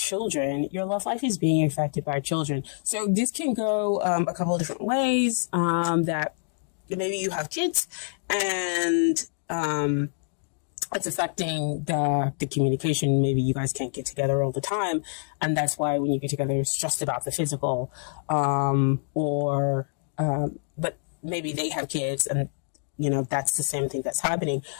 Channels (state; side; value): silent; right; digital silence